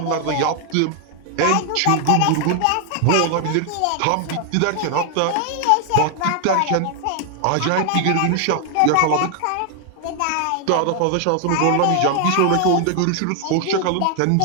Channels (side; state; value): both; different; correlation 0.00